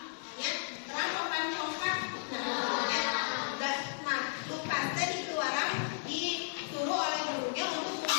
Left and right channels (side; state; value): right; silent; digital silence